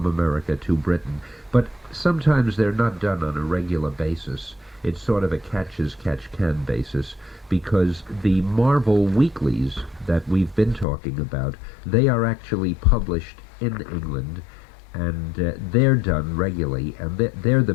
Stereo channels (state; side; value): drops out; right; at 10.9 s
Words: America to Britain, but sometimes they're not done on a regular basis. It's sort of a catch-as-catch-can basis, because the Marvel weeklies that we've been talking about, they are actually published in England, and they're done regularly, and they're the